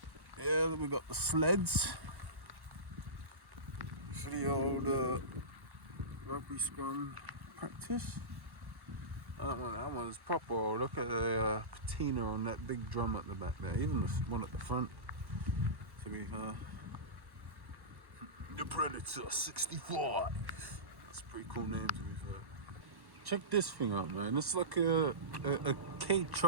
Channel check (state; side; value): late; left; 1.1 ms